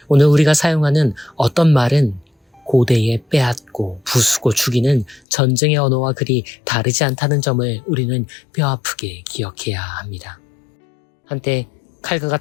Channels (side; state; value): right; drops out; at 5.2 s